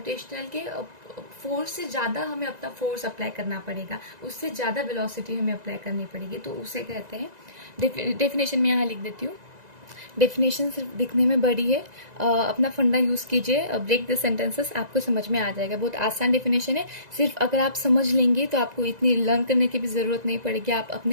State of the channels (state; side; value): late; left; 1.9 ms